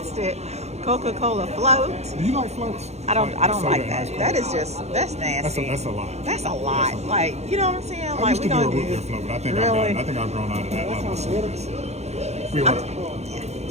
Coca-Cola float. Do you like floats? I don't like that. That is just, that's nasty. That's a lot. That's a lot. Like, you know what I'm saying? I Like, used we to do a don't root do beer float, but I think really? I've grown out of that level of sweetness. We were.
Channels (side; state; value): left; late; 0.31 ms